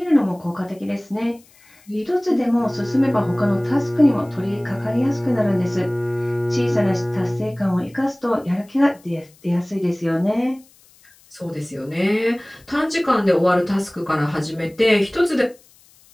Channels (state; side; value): noise; left; hiss, 29 dB below the sound